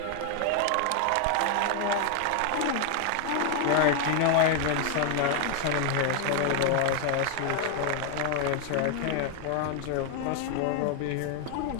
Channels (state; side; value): different; both; correlation 0.01